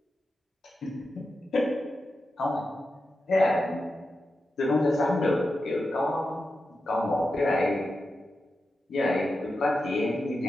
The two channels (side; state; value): both; normal; correlation 0.90